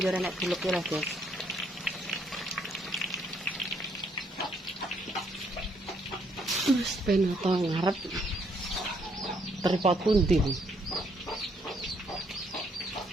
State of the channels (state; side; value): normal; both; correlation 0.70